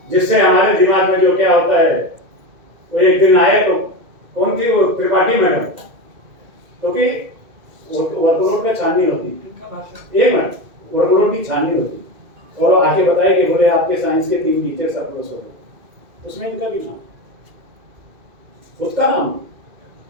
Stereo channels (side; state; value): left; late; 2.2 ms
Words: जिससे हमारे दिमाग में जो क्या होता है, वो एक दिन आए तो कौन थी वो त्रिपाठी मैडम, क्योंकि वर्कलोड का छाननी होती, एक मिनट वर्कलोड की छाननी होती, और आके बताए कि बोले आपके साइंस के 3 टीचर्स अप्रोच हो गए, उसमें इनका भी नाम, उसका नाम।